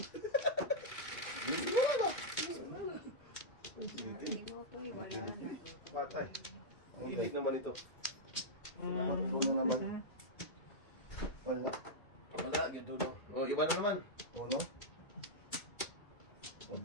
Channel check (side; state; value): right; late; 2.1 ms